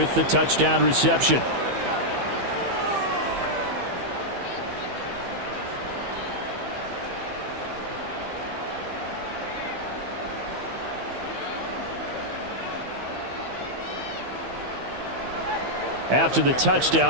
the touchdown reception. After the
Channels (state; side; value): late; left; 15 ms